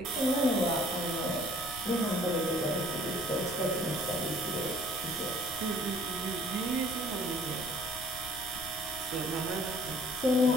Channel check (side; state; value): left; noise; rumble, 16 dB below the sound